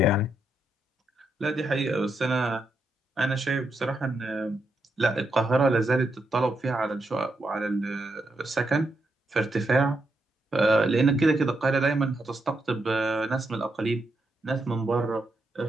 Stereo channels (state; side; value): normal; both; correlation 0.82